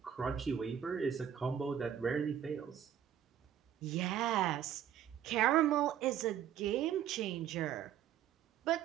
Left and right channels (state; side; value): quieter; left; 9.8 dB